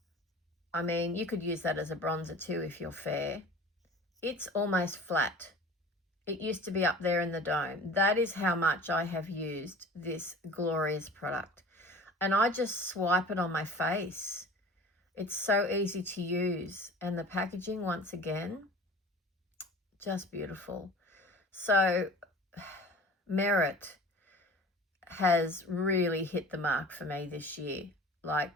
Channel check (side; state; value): both; normal; correlation 0.42